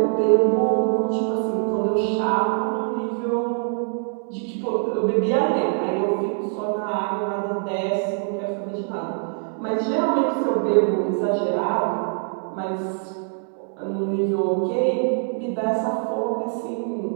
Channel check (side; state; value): left; silent; 55 dB below the other